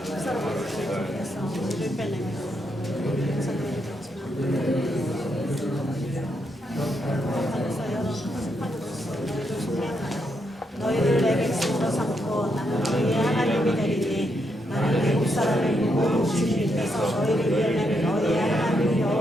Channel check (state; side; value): normal; both; correlation 0.79